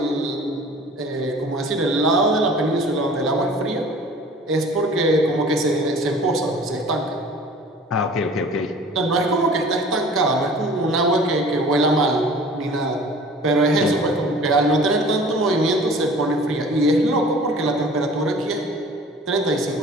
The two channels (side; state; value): both; normal; correlation 0.46